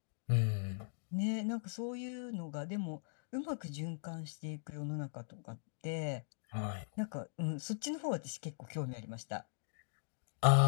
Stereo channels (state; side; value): silent; right; digital silence